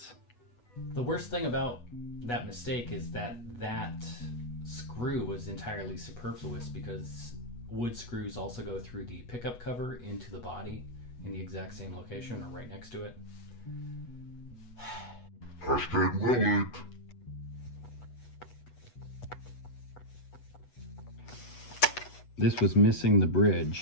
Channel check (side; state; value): right; late; 8.2 ms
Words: The worst thing about that mistake is that screw was entirely superfluous, because wood screws also go through the pickup cover into the body, in the exact same location or right next to it. Hashtag will it. This was missing the